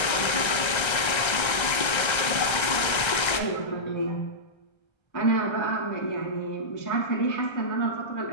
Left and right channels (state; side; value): late; right; 1.3 ms